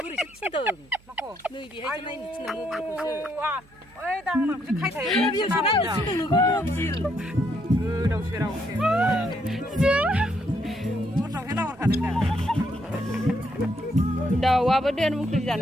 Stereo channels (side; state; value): right; noise; hum, 28 dB below the sound